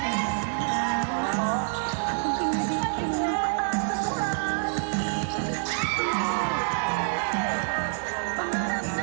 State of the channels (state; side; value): silent; left; 60 dB below the other